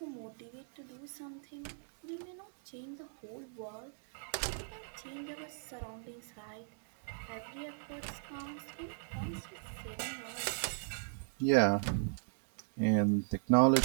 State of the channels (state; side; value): silent; left; digital silence